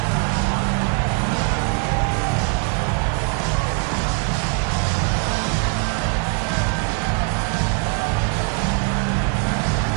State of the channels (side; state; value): left; quieter; 34.5 dB